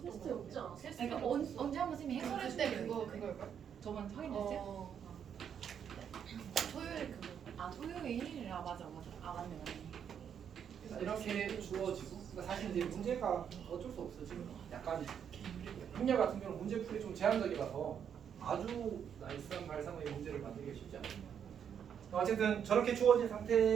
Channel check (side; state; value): left; quieter; 8.2 dB